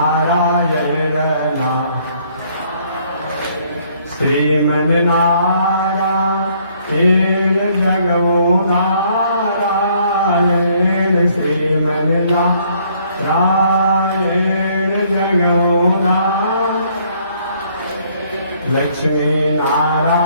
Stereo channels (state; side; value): inverted; both; correlation -0.64